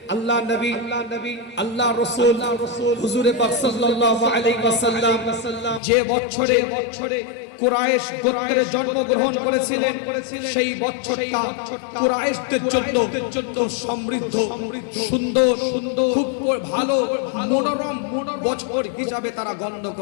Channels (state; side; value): drops out; right; at 5.8 s